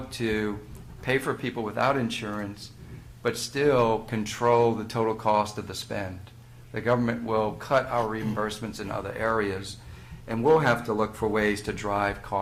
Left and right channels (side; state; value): both; identical; correlation 1.00